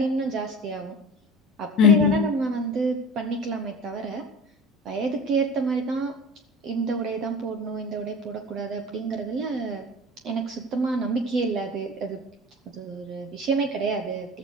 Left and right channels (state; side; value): normal; both; correlation 0.36